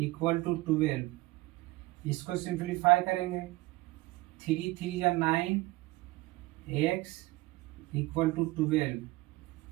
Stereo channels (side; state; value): left; quieter; 20.3 dB